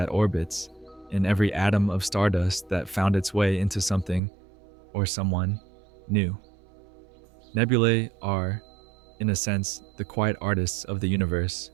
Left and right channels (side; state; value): left; drops out; at 4.2 s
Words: orbits, in every atom of stardust that found its way into something or someone new. Nebulae are, in a sense, the quiet artists of the universe.